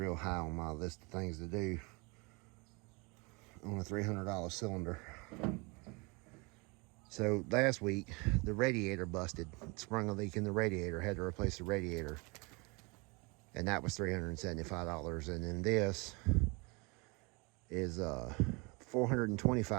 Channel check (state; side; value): quieter; left; 28.4 dB